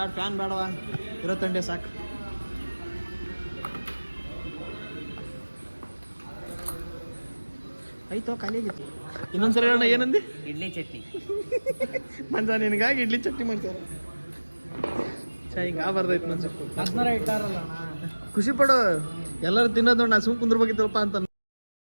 ಫ್ಯಾನ್ ಬೇಡವಾ ಇರೋ ತಂಡೆ ಸಾಕು ಆಯ್ತು ಖಾಲಿ ಆಗಿತ್ತು ಇನ್ನೊಂದ್ಸರಿ ಹೇಳೋಣ ಏನಂದಿ ಇಡ್ಲಿ ಚಟ್ನಿ ಮಂಜ ನಿನಗಾಗಿ ಇಡ್ಲಿ ಚಟ್ನಿ ಮಾಡ್ತಾರೆ ಹಿಂಗೆ ಬರ್ದೈತೆ ಮಂಜು ಇಟ್ಟಾರಲ್ಲ ಖುಷಿ ಪಡು ಎಲ್ಲರೂ ತಿನ್ನೋದು ನೋಡಿ ನಾ ಸುಮ್ ಕುಂದ್ರಬೇಕಿತ್ತಪ್ಪ ಅಂತ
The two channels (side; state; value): both; inverted; correlation -1.00